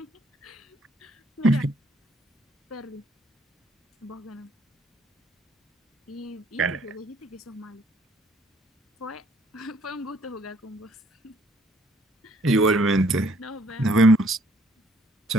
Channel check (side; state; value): both; normal; correlation 0.64